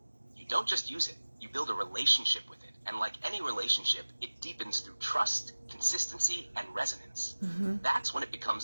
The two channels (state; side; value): inverted; both; correlation -1.00